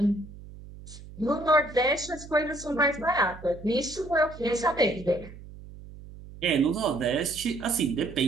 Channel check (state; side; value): noise; right; hum, 16 dB below the sound